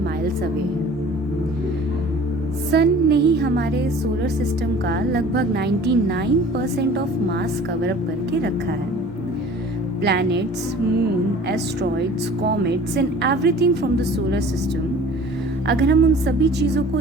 माइल्स अवे है। सन ने ही हमारे सोलर सिस्टम का लगभग 99% ऑफ मास कवर अप करके रखा है। Planets, moon, asteroids, comets and everything from the solar system, अगर हम उन सभी चीज़ों को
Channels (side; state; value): both; normal; correlation 0.46